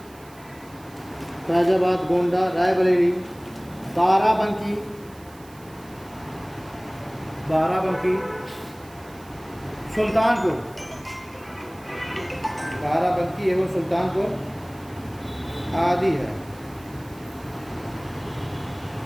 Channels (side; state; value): right; noise; hiss, 24 dB below the sound